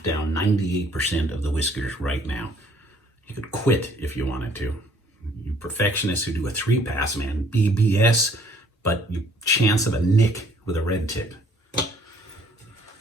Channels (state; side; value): normal; both; correlation 0.61